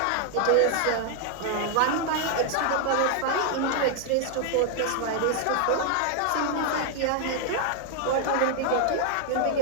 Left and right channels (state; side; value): different; both; correlation 0.00